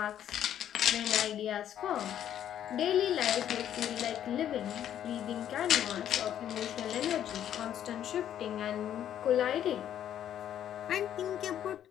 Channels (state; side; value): quieter; right; 10.5 dB